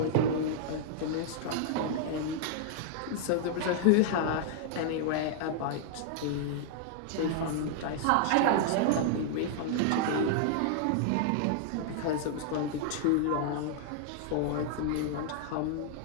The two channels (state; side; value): different; both; correlation -0.01